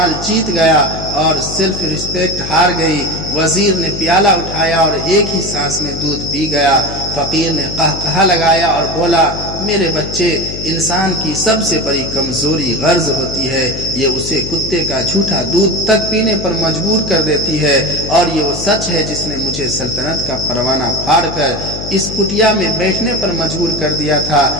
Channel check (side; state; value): left; noise; hum, 9 dB below the sound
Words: جیت گیا اور سیلف ریسپیکٹ ہار گئی۔ وزیر نے پیالہ اٹھایا اور ایک ہی سانس میں دودھ پی گیا۔ فقیر نے قہقہا لگایا اور بولا، میرے بچے، انسان کی سب سے بڑی کمزوری غرض ہوتی ہے، یہ اسے کتے کا جھوٹا دودھ تک پینے پر مجبور کر دیتی ہے، اور یہ وہ سچ ہے جس نے مجھے سلطنت کا پروانہ پھاڑ کر اس کٹیا میں بیٹھنے پر مجبور کر دیا تھا۔